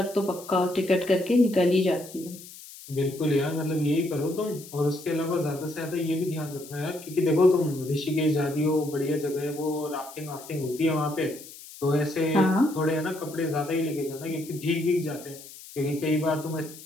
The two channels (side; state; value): left; noise; hiss, 17 dB below the sound